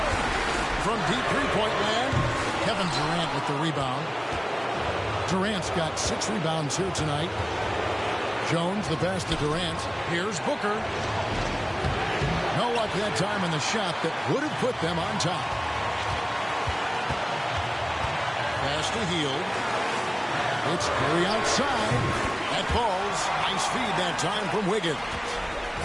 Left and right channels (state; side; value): identical; both; correlation 1.00